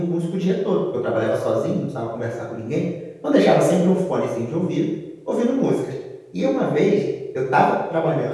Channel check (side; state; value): both; identical; correlation 1.00